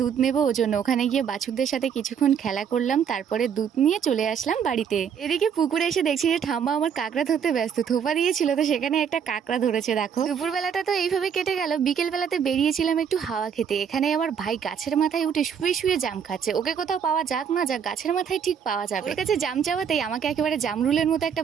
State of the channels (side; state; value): left; quieter; 7.6 dB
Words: নেবো ওর জন্য। ওখানে গিয়ে বাছুরদের সাথে কিছুক্ষণ খেলা করলাম, তারপরে দুধ নিয়ে চলে আসলাম বাড়িতে। এদিকে পুকুরে এসে দেখছি যে ঠাম্মা আমার কাঁকড়া ধরতে ব্যস্ত। থোপা দিয়েছিল তো সেখানে একটা কাঁকড়া ধরেছে। দেখো, দুপুরবেলাটা তো এইভাবে কেটে গেল। বিকেল বেলাতে বেরিয়েছিলাম একটু হাওয়া খেতে। এখানে আমার ভাই গাছের মাথায় উঠে শুয়ে শুয়ে জাম খাচ্ছে। ওকে কোথাও পাওয়া যাক না যাক, গাছের মাথায় ঠিক পাওয়া যাবে। ওর কাছে জাম চাওয়াতেই আমাকে একেবারে জামরুলের মতো একটা